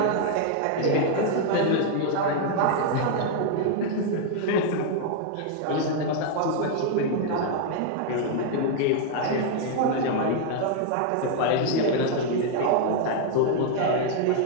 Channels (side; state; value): both; different; correlation 0.00